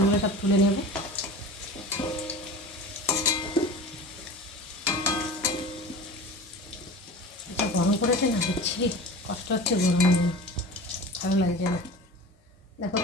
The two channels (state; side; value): normal; both; correlation 0.35